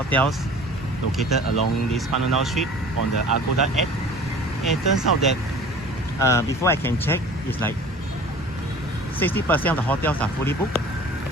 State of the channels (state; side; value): normal; both; correlation 0.44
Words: located along this Pham Ngu Lao street on the Agoda app. And it turns out that before I can check, it's like 60% of the hotels are fully booked